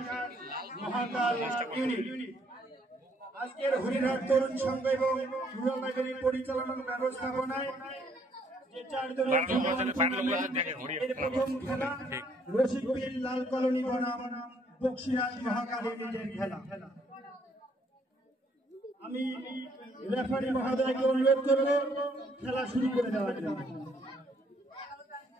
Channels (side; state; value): both; normal; correlation 0.67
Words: আজকের হরিহাট তরুণ সংঘ এবং রুরাল লাইব্রেরি পরিচালনার ব্যবস্থাপনায় প্রথম খেলা রশিকবিল লাল কলোনি বনাম বক্সিরাজ মহাকালীদের খেলা। আমি রেফারি মহোদয়কে অনুরোধ করব খেলা শুরু করে দেওয়ার জন্য।